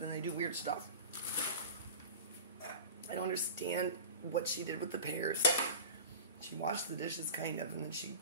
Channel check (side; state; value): both; inverted; correlation -0.32